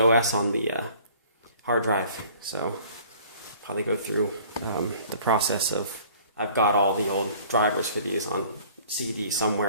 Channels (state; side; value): inverted; both; correlation -0.52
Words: on the hard drive, so probably go through the process of, I've got all the old drivers for these on CD